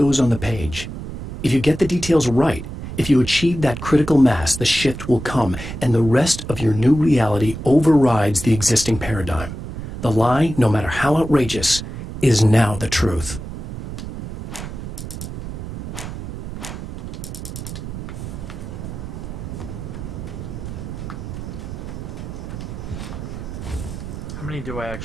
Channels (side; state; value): right; noise; rumble, 9 dB below the sound